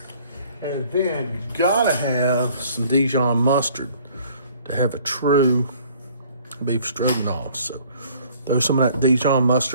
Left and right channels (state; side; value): inverted; both; correlation -0.56